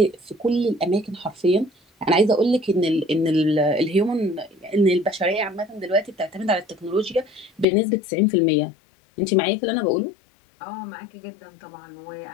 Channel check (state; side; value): drops out; right; at 7.7 s